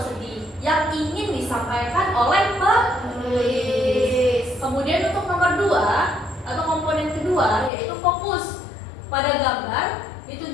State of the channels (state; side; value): drops out; right; at 7.7 s